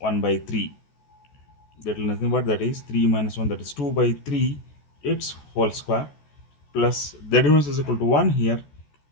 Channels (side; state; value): right; late; 14 ms